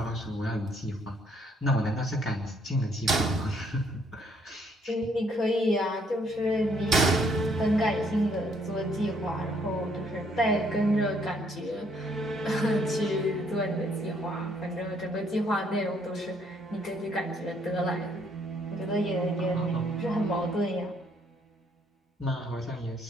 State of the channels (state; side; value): normal; both; correlation 0.68